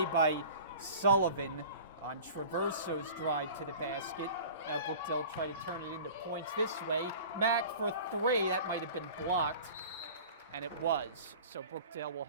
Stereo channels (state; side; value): inverted; both; correlation -0.41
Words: by Sullivan on Traverso's drive to the basket. Now Brookdale try to turn it into points this way. Mack for 3, that might have been blocked. And it was, so Brookdale will